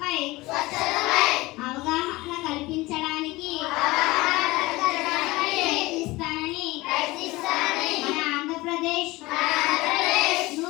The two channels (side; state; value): right; quieter; 20.6 dB